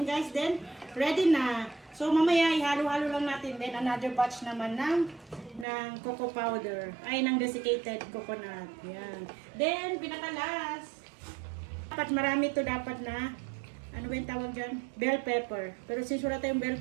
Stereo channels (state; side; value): drops out; left; at 5.7 s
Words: guys. Then, ready na. So mamaya ihalo-halo lang natin. Then another batch naman ng cocoa powder. Ay, ng desiccated coconut. Yan. Then, pinakalas. Dapat marami to dapat na, ano ba yung tawag dyan? Bell pepper. Pero since wala tayong bell